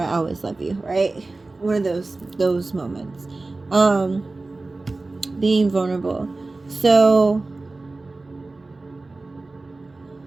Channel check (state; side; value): quieter; left; 3.3 dB